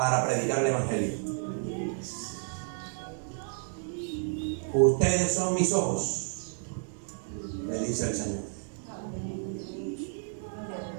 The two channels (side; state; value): left; silent; 57 dB below the other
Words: predicar el Evangelio. Ustedes son mis ojos, le dice el Señor.